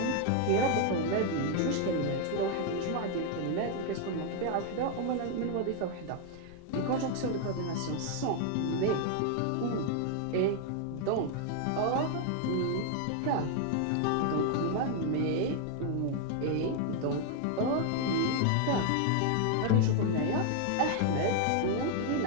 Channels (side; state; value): both; different; correlation 0.00